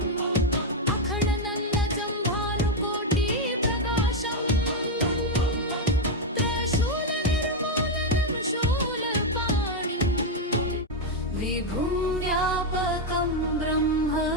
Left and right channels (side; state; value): both; normal; correlation 0.02